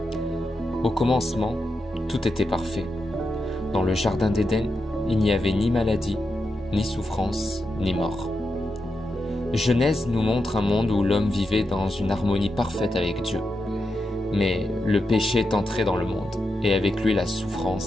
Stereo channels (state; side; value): normal; both; correlation 0.87